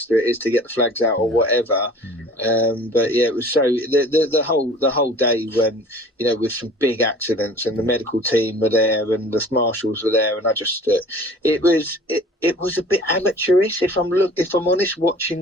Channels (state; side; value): normal; both; correlation 0.46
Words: it is to get the flags out or whatever. But yeah, it was so the whole day, when, you know, with some big accidents, and the medical team were there and the marshals were there, and I just it was a bit amateurish, if I'm honest,